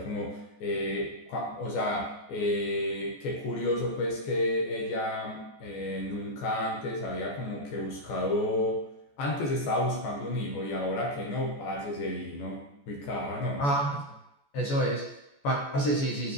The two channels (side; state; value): right; late; 14 ms